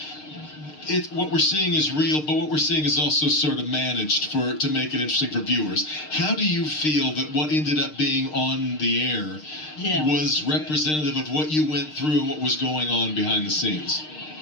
what we're seeing is real, but what we're seeing is also sort of managed to make it interesting for viewers. How do you feel that what ended up being on the air was representative of what you went through and what was going on behind the scenes?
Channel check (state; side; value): late; right; 6.6 ms